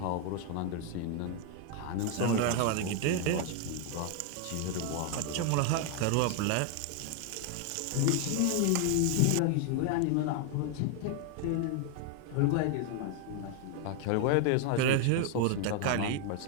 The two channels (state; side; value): different; both; correlation 0.01